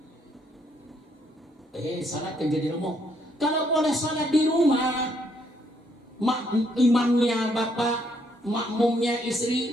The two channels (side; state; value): both; normal; correlation 0.71